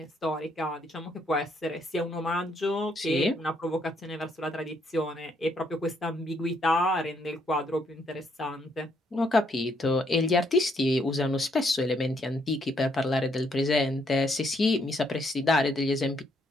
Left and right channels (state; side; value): normal; both; correlation 0.72